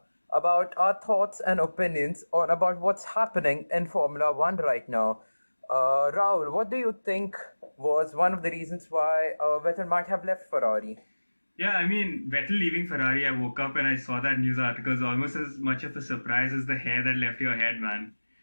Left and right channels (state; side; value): inverted; both; correlation -1.00